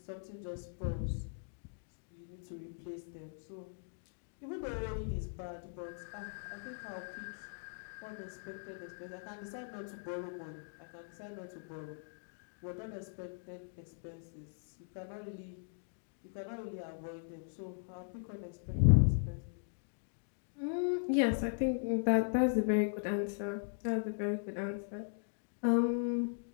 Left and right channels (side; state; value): right; silent; digital silence